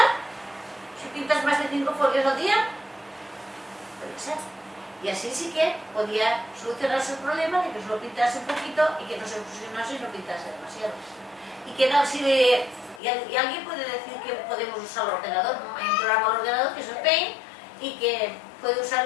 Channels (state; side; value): drops out; right; at 13.0 s